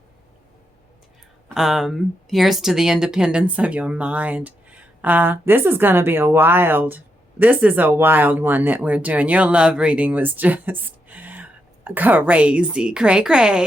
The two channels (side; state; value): both; normal; correlation 0.82